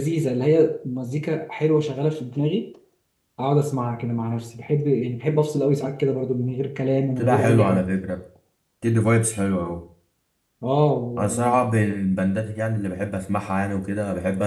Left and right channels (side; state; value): both; identical; correlation 1.00